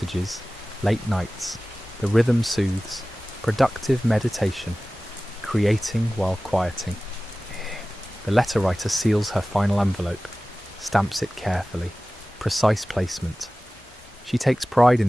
late nights, the rhythm soothes, productive meditation, creating while quieting. The letter writer seals her final envelope, stamps it carefully, precise placement. She takes pride in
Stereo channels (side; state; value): both; normal; correlation 0.97